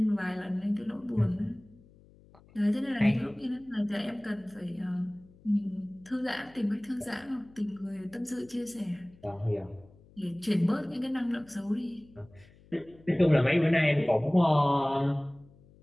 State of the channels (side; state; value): left; noise; hum, 26 dB below the sound